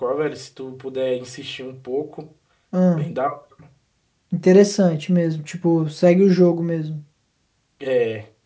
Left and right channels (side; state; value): both; identical; correlation 1.00